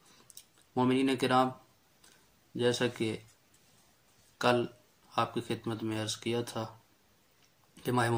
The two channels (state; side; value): identical; both; correlation 1.00